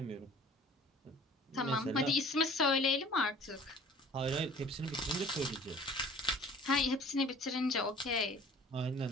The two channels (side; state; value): both; normal; correlation 0.49